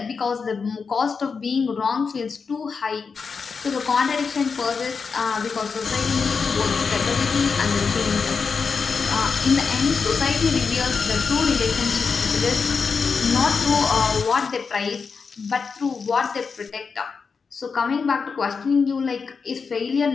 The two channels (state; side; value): quieter; right; 5.3 dB